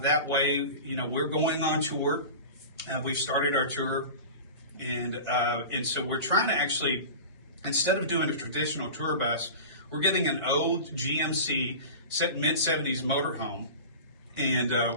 way. We're going on tour. We've started our tour. And so we're trying to actually, instead of doing a traditional tour bus, we're getting an old GMC mid-70s motorhome, and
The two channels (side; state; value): both; inverted; correlation -0.33